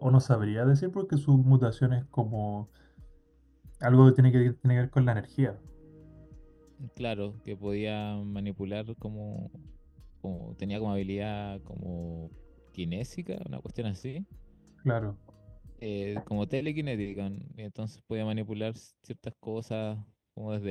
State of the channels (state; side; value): identical; both; correlation 1.00